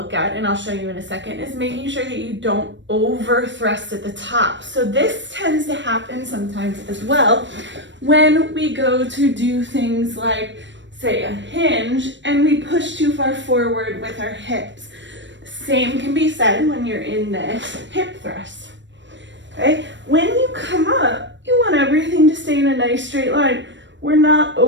at, and I'll show you in a second, is making sure that you don't over thrust at the top. So this tends to happen sometimes as well when we go to do things like, say, a hinge, and we push too far forward with our hips. Same can be said when you're in this hip thrust. Okay, when you come up, you want everything to stay in a nice straight line. We're not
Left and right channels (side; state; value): left; late; 0.53 ms